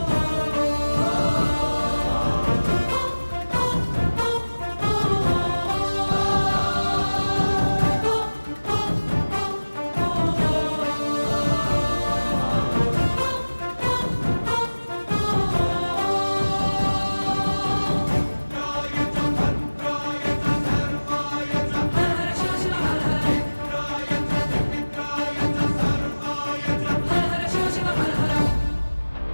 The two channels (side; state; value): both; inverted; correlation -1.00